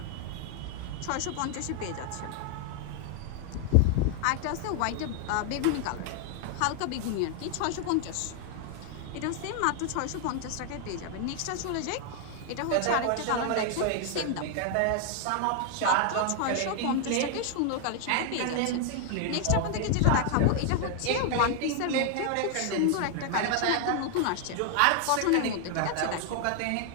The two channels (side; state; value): both; different; correlation 0.00